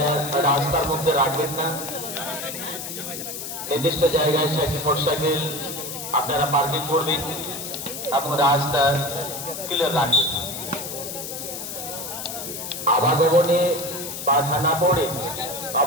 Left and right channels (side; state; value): left; noise; hiss, 7 dB below the sound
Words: রাস্তার মধ্যে রাখবেন না, নির্দিষ্ট জায়গায় মোটরসাইকেল আপনারা পার্কিং করবেন এবং রাস্তা ক্লিয়ার রাখবেন। আবাগমনে বাধা না পড়ে